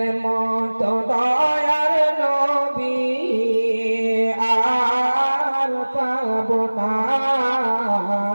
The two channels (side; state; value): both; inverted; correlation -1.00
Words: মতো দয়ার নবী আর পাব না।